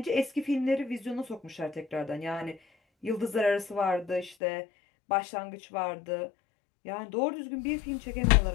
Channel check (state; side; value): drops out; right; at 4.4 s